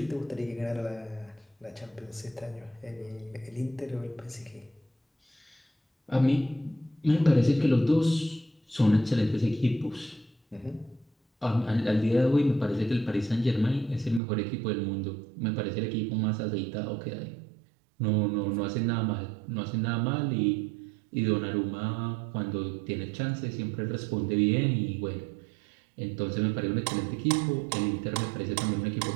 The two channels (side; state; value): left; drops out; at 14.2 s